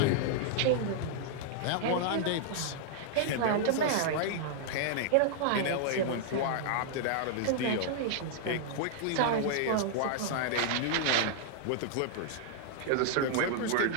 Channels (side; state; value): both; different; correlation -0.01